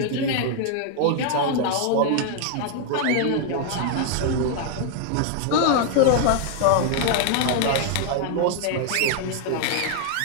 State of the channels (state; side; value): different; both; correlation 0.00